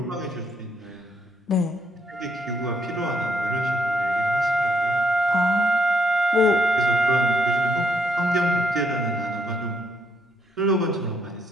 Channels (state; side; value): normal; both; correlation 0.75